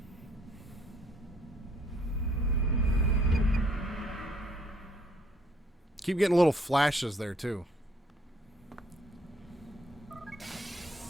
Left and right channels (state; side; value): normal; both; correlation 0.64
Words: Keep getting little flashes there, too.